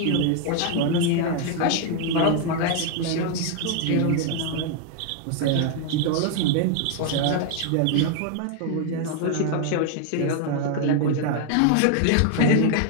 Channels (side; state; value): both; different; correlation 0.00